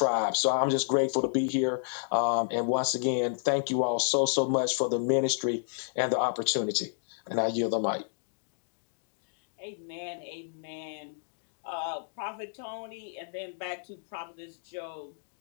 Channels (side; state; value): right; silent; digital silence